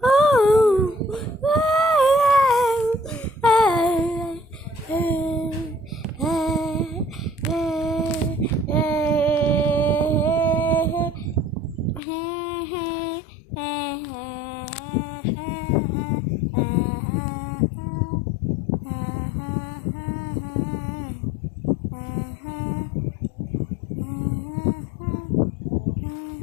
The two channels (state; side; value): drops out; right; at 12.0 s